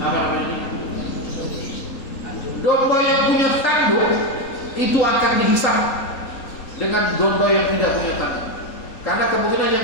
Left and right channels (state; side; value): late; right; 3.8 ms